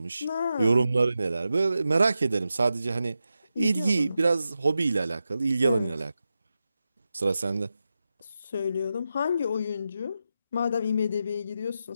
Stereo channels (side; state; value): both; inverted; correlation -0.90